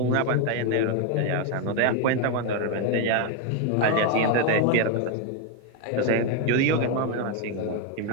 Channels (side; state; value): both; different; correlation 0.01